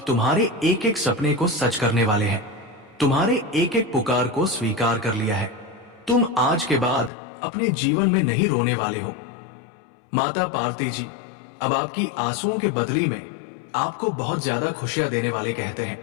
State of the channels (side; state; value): right; drops out; at 7.1 s